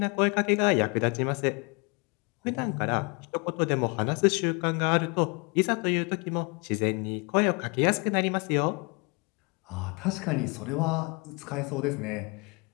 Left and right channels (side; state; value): right; quieter; 31.1 dB